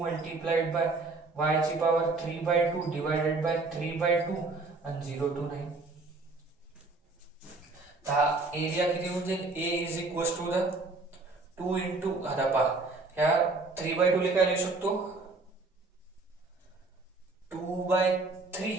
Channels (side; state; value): left; quieter; 3.5 dB